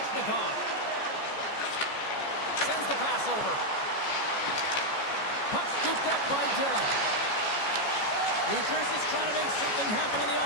Sends the pass over. Puck scooped up by Dillon. New Jersey's trying to make something happen in the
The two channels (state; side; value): late; right; 14 ms